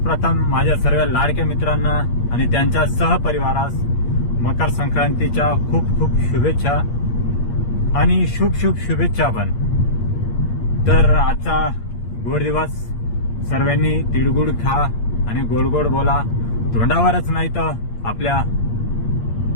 प्रथम माझ्या सर्व लाडक्या मित्रांना आणि त्यांच्या सहपरिवारास मकर संक्रांतीच्या खूप खूप शुभेच्छा आणि शुभ शुभ शुभेच्छा पण। तर आजचा गोड दिवस, सर्वांनी तिळगुळ खा आणि गोड गोड बोला, तोंडावरच नाही तर आपल्या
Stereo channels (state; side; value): late; right; 8.6 ms